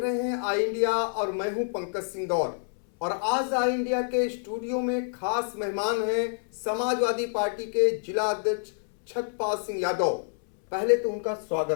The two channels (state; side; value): silent; right; 60 dB below the other